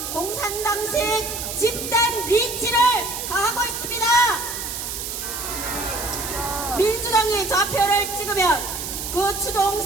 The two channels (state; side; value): noise; right; hiss, 5 dB below the sound